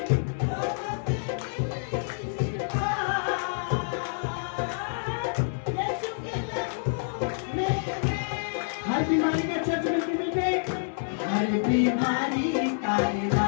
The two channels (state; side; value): silent; right; 55 dB below the other